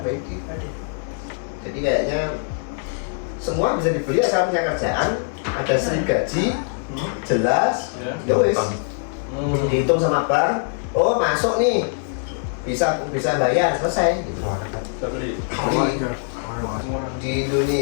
kredit. Jadi kayaknya semua bisa dibeli asal punya kerjaan, ada slip gaji, jelas, Ya. ya wes. Dihitung sama bank, oh masuk nih, bisa bayar, selesai gitu. Bisa beli. Beli. Semua orang. Di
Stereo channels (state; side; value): silent; right; 62 dB below the other